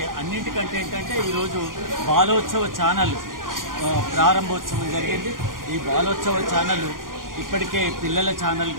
అన్నింటికంటే ఏంటంటే ఈరోజు బాలోత్సవ ఛానల్ ప్రారంభోత్సవం జరిగింది. ఈ బాలోత్సవ ఛానల్ ఇప్పటికే పిల్లల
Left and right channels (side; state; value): left; late; 0.90 ms